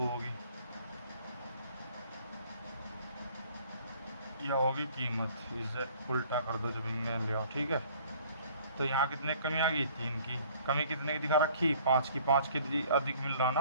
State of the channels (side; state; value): both; inverted; correlation -0.55